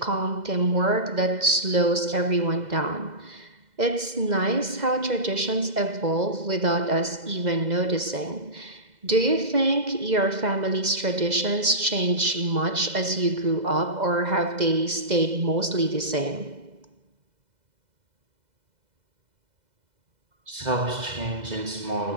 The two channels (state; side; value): late; left; 2.0 ms